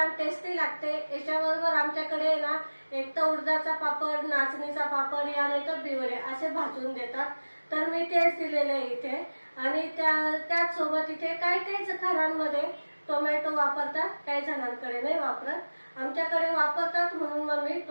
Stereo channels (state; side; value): inverted; both; correlation -1.00